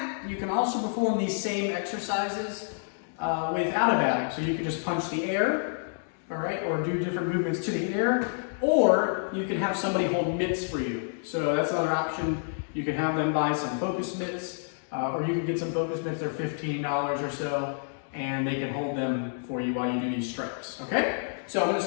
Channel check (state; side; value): silent; right; digital silence